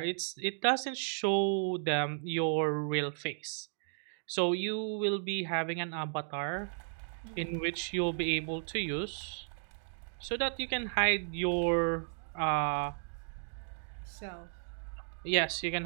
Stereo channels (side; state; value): left; silent; digital silence